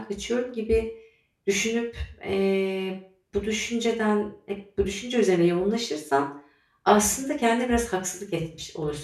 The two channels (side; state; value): both; identical; correlation 1.00